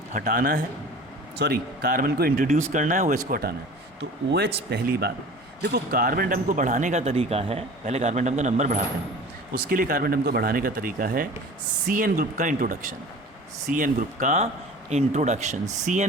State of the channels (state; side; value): normal; both; correlation 0.41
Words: हटाना है, कार्बन को इंट्रोड्यूस करना है, OH को हटाना है। तो OH पहली बात, देखो कार्बन एटम को बढ़ाने का तरीका है, पहले कार्बन एटम का नंबर बढ़ाते हैं, उसके लिए कार्बन एटम को बढ़ाने का तरीका है CN ग्रुप का इंट्रोडक्शन। CN ग्रुप का इंट्रोडक्शन,